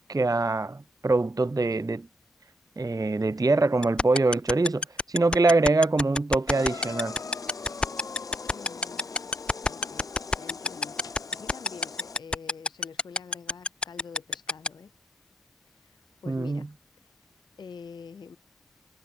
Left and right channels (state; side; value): normal; both; correlation 0.76